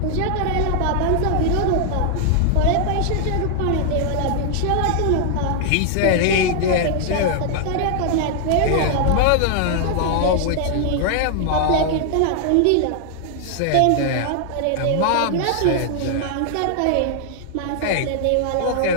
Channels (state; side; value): different; both; correlation 0.00